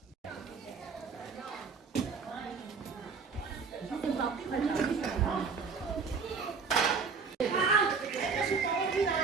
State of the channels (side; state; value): left; quieter; 5.2 dB